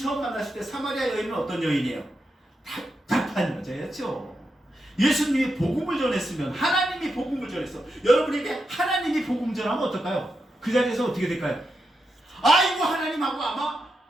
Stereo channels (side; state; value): both; normal; correlation 0.86